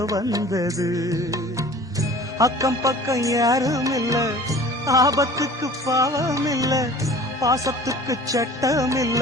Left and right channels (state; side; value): normal; both; correlation 0.45